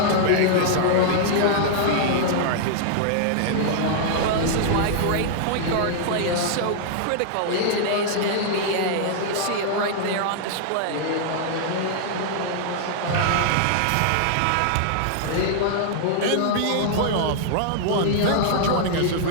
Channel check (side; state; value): both; different; correlation -0.01